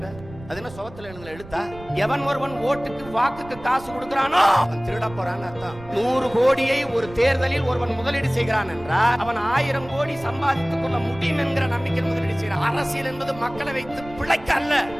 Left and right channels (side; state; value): right; noise; rumble, 17 dB below the sound